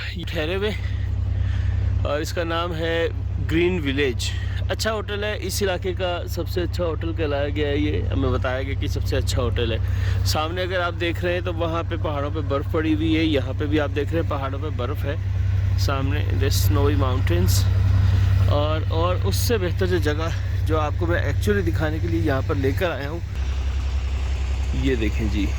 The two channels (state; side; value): identical; both; correlation 1.00